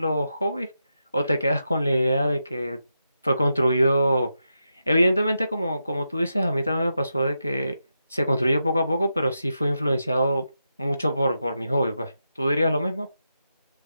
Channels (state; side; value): inverted; both; correlation -0.87